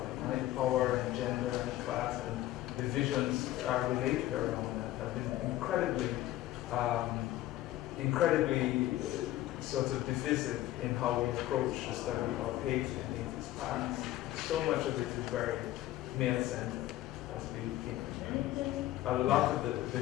right? Power and gender and class and divisions are related around that have been incredibly sort of divisive in how we approach the study of hate in its past. So much of it is very male-centered. A lot of the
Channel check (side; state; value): right; quieter; 14.9 dB